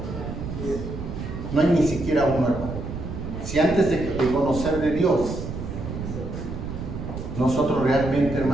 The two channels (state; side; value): noise; right; rumble, 7 dB below the sound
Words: No hay ni siquiera uno, hermano. Si antes de conocer de Dios, nosotros realmente,